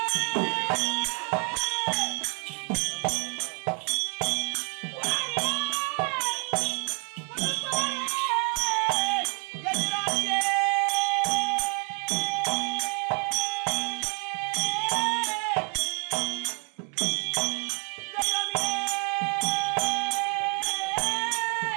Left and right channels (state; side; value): quieter; left; 39.1 dB